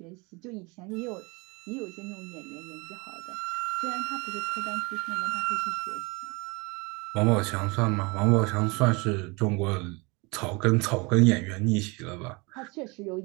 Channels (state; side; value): quieter; left; 27.5 dB